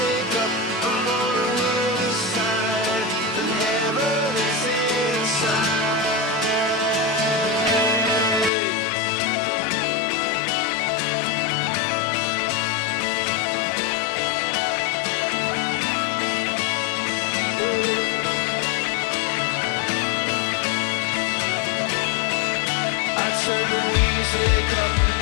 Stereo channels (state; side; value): drops out; right; at 8.5 s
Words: up, I'm on the other side, and heaven is inside. I turn the music up,